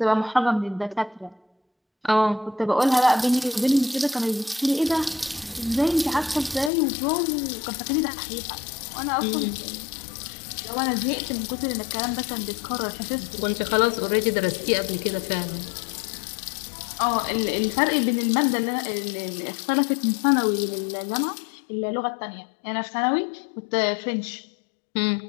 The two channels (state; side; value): drops out; right; at 6.7 s